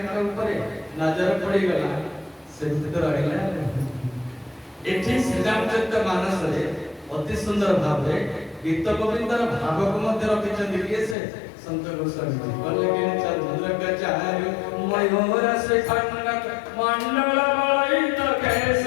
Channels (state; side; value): drops out; right; at 11.2 s